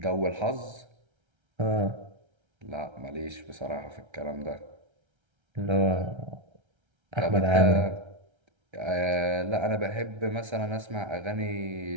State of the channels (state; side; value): late; left; 1.3 ms